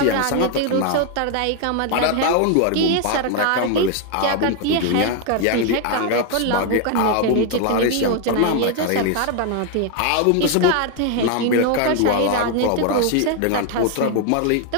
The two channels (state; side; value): different; both; correlation 0.01